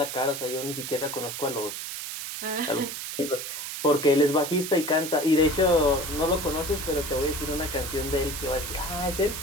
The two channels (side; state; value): right; noise; hiss, 6 dB below the sound